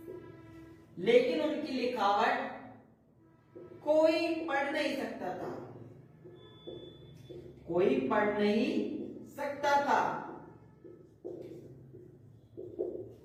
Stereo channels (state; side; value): identical; both; correlation 1.00